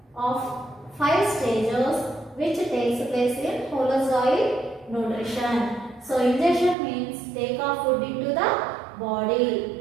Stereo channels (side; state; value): left; drops out; at 6.8 s